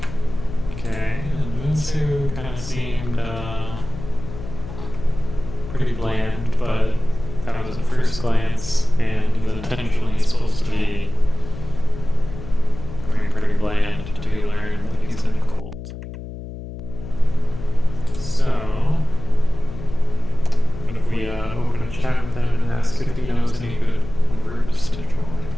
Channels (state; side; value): noise; left; hum, 11 dB below the sound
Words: okay, and Moonsu kind of seemed pretty bland, but that was at first glance, and he's intentionally supposed to be pretty bland until you learn that he's in a cult. So